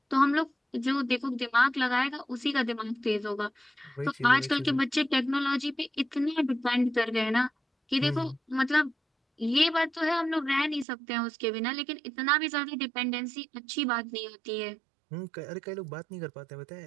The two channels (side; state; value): left; drops out; at 10.9 s